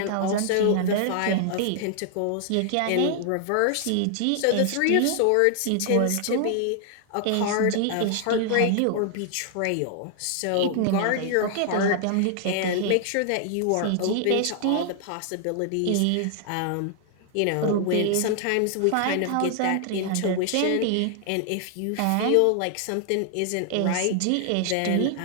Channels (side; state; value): both; different; correlation 0.00